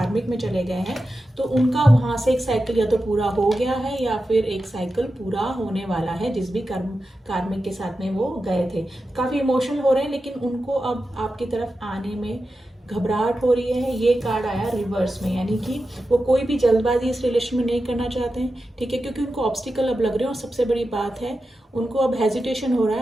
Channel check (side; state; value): both; normal; correlation 0.91